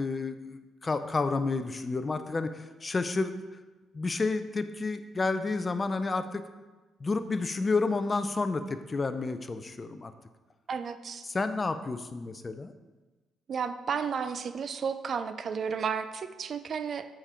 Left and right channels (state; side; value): normal; both; correlation 0.86